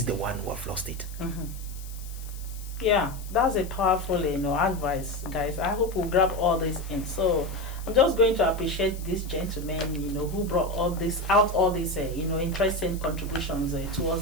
the one who have lost it. Yeah, that's a powerful advice, guys. I hope we'll grab all this in. So I'm just going to appreciate these gentlemen, who brought all these interesting contributions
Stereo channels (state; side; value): noise; left; hiss, 18 dB below the sound